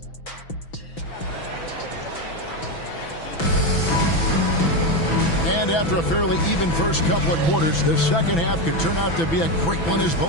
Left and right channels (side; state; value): right; late; 6.0 ms